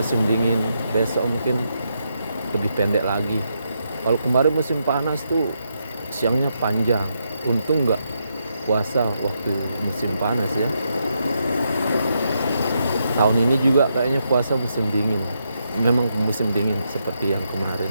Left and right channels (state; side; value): inverted; both; correlation -0.81